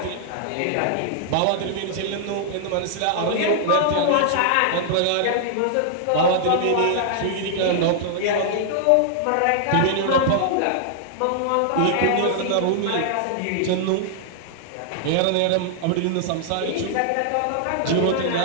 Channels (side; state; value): both; different; correlation -0.01